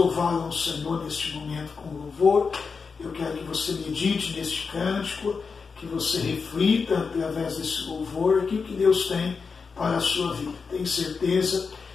ao Senhor neste momento com louvor. Eu quero que você medite neste cântico, que você reflita através desse louvor aquilo que Deus tem para a sua vida. Tenho certeza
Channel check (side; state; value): right; quieter; 5.1 dB